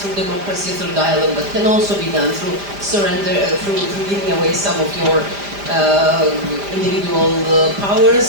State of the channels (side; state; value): left; late; 5.0 ms